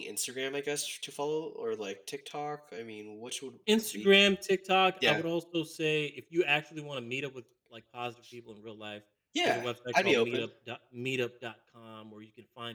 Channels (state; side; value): identical; both; correlation 1.00